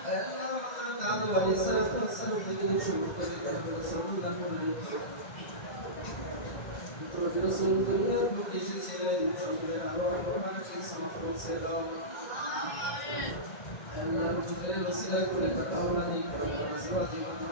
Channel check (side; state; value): right; late; 2.2 ms